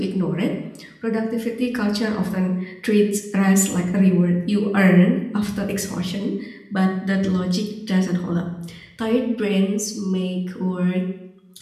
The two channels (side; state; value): both; identical; correlation 1.00